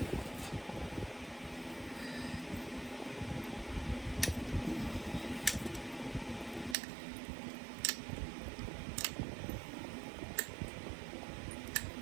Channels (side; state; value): left; drops out; at 6.8 s